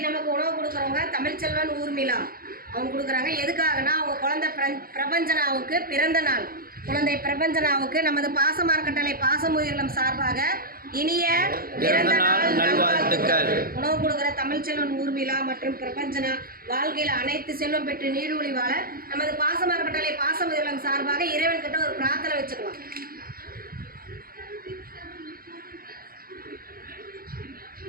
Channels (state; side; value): late; left; 0.43 ms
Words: நமக்கு உணவு கொடுக்குறவங்க தமிழ்ச்செல்வன் ஊர்மிளா அவங்க கொடுக்குறாங்க. எதுக்காகனா அவங்க குழந்தை பிரபஞ்சனாவுக்கு பிறந்த நாள். குழந்தை பிரபஞ்சனாவுக்கு நமது பாசமார்க்கட்டளை பாசமுயிரிலம் சார்பாக இனிய பிறந்த நாள் நல்வாழ்த்துக்கள். உணவு கொடுக்குற தமிழ்ச்செல்வன் ஊர்மிளா மற்றும் பிரபஞ்சனா வாழ்க்கையில் அனைத்து செல்வம் பெற்று நீடூழி வாழ நமது பாசமார்க்கட்டளை பாசமுயிரிலம் சார்பாக இறைவன் கிட்ட ஒரு பிரார்த்தனை வச்சுக்கலாம்.